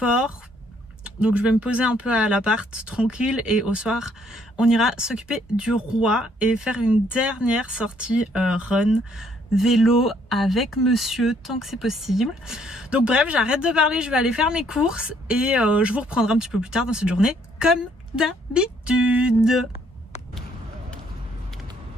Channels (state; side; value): normal; both; correlation 0.66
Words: donc je vais me poser un peu à l'appart tranquille, et au soir on ira s'occuper du roi et faire une dernière sortie run vélo avec monsieur tant que c'est possible. Donc bref, j'arrête de parler, je vais aller faire mes courses et je vous reprendrai un petit peu plus tard dans cette journée comme d'habitude.